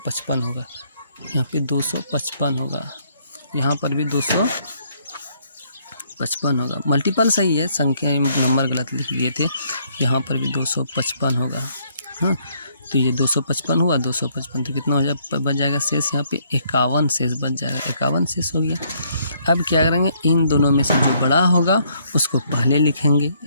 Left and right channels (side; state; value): both; inverted; correlation -0.68